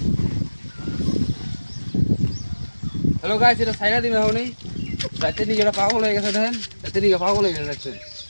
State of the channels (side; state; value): both; inverted; correlation -1.00